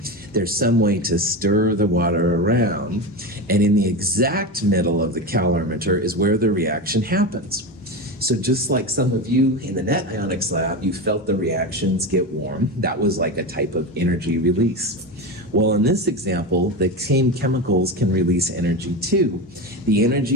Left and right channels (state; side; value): normal; both; correlation 0.20